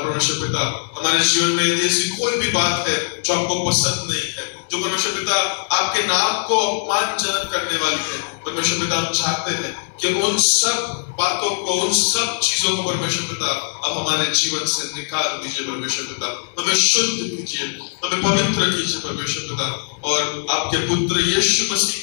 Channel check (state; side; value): silent; right; digital silence